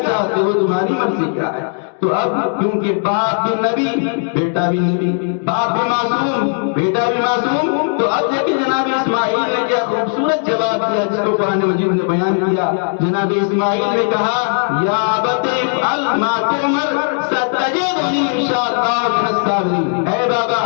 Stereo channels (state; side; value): silent; right; 58 dB below the other